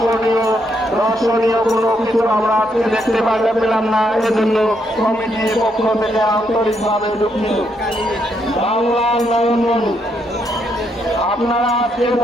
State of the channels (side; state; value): both; normal; correlation 0.76